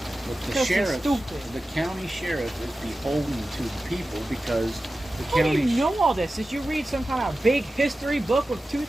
But the Because they're sheriff, stupid. the county sheriff, is beholden to the people because the How do county. you know all this? Did you read some kind of big history book with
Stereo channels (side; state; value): both; normal; correlation 0.94